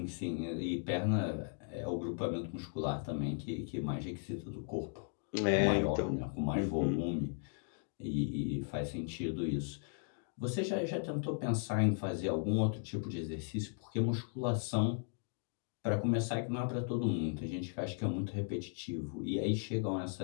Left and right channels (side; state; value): right; silent; 53 dB below the other